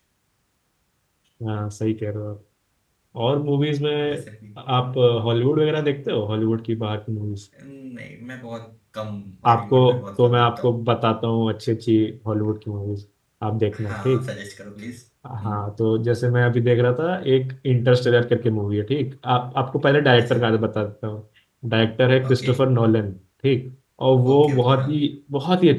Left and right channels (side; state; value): both; identical; correlation 1.00